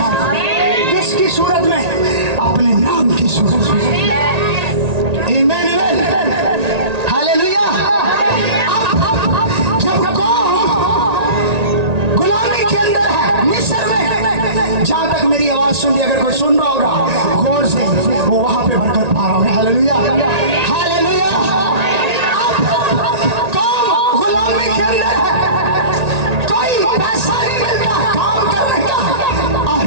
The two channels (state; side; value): late; left; 1.8 ms